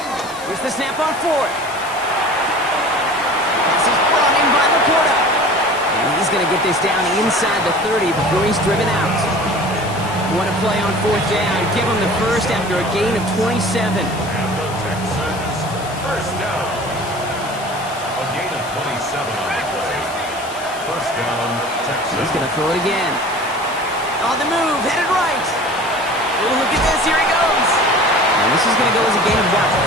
Here's the snap on 4th. This is brought in by Laporta. And he's going to get this down inside the 30 before he's driven out. What a play on 4th down. Give him the first after a gain of 27. First down. A gain of 27 on the play. First down, Texas. He's going to throw it again. On the move, headed right. Oh, look at this. Here he goes. And this is going to go as a gain of about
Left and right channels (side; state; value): left; noise; hiss, 16 dB below the sound